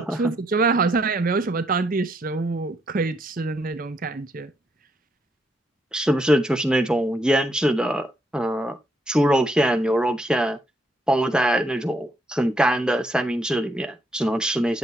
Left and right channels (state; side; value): normal; both; correlation 0.74